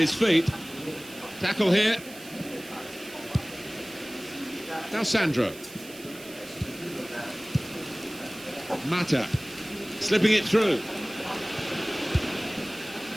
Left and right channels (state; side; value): noise; right; hiss, 17 dB below the sound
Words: feet. Tackle here. Now Sandro. Mata slipping it through.